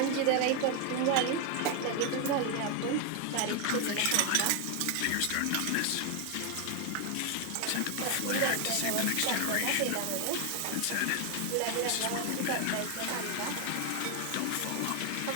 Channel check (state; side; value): different; both; correlation 0.01